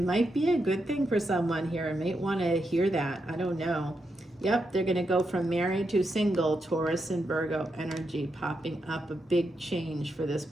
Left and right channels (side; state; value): both; normal; correlation 0.84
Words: might be a good thing for someone here. I might want to hear that. I don't know. Yep, they're going to go from married to single. Taurus and Virgo energy popping up, a big change for this